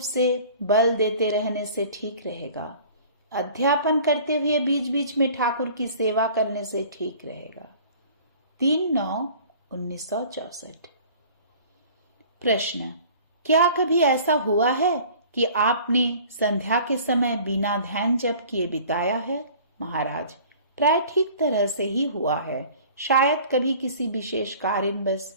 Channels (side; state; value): both; inverted; correlation -0.47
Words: बल देते रहने से ठीक रहेगा। अध्यापन करते हुए बीच बीच में ठाकुर की सेवा करने से ठीक रहेगा। 3/9/1964। प्रश्न: क्या कभी ऐसा हुआ है कि आपने संध्या के समय बिना ध्यान जप किए बिताया है? महाराज, प्राय ठीक तरह से ही हुआ है, शायद कभी किसी विशेष